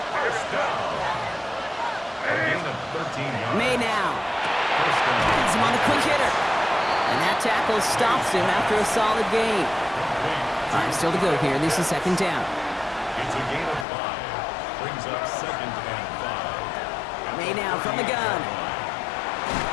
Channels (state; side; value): drops out; right; at 13.9 s